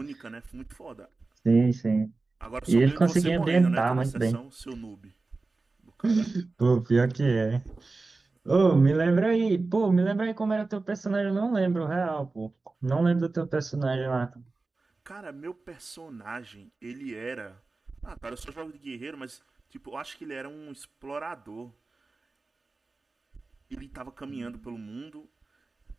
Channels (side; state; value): left; quieter; 3.6 dB